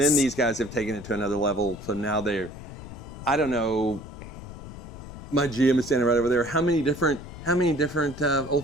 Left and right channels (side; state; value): left; noise; rumble, 13 dB below the sound